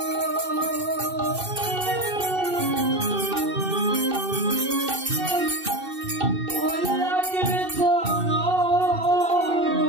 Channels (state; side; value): late; left; 2.6 ms